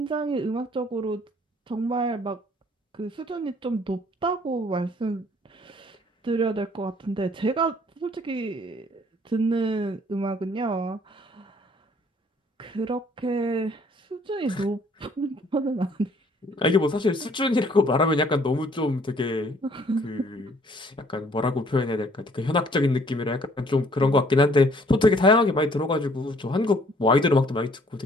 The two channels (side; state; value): both; normal; correlation 0.60